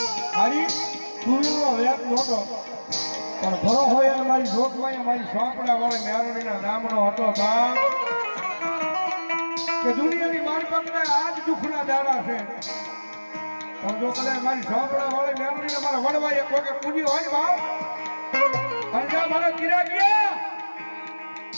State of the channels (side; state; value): both; inverted; correlation -1.00